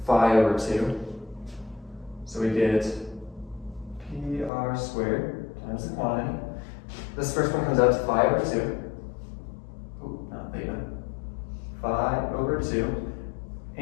phi over 2. So we get pr squared times the quantity. This first one comes out to phi over 2. Oh, not theta. Phi over 2.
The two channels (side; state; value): right; drops out; at 4.5 s